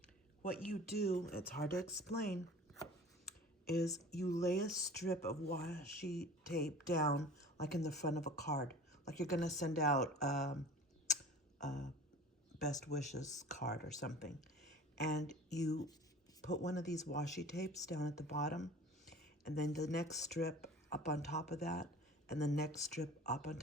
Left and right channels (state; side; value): normal; both; correlation 0.42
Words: what you do, it's hard to explain, is you lay a strip of washi tape down like in the front of a card. Like you're gonna send out best wishes card or something. And you put one of these washi tapes down at the bottom, and then the next strip up on top of that, and the next strip up on